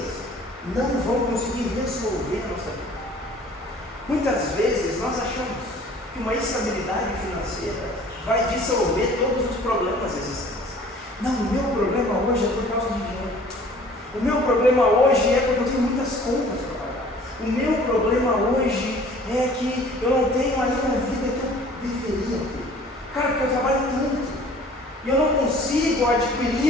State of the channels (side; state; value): both; normal; correlation 0.51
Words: não vão conseguir resolver a nossa vida. Muitas vezes nós achamos que uma estabilidade financeira vai dissolver todos os problemas existentes. Não, o meu problema hoje é por causa de dinheiro. O meu problema hoje é porque eu tenho muitas contas para pagar. O meu problema hoje é que eu não tenho ainda a vida que eu deveria ter. Cara, porque eu trabalho tanto e eu não consigo